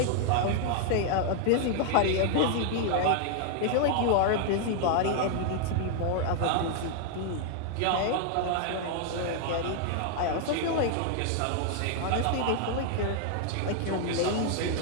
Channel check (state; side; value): different; both; correlation 0.00